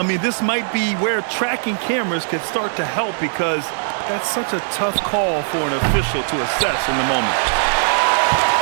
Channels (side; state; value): left; silent; digital silence